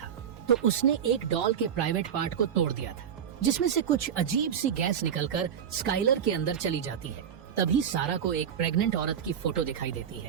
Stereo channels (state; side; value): quieter; left; 8.3 dB